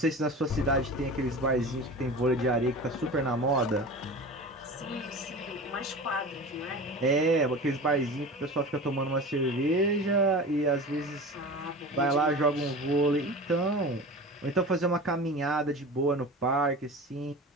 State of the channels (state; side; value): normal; both; correlation 0.33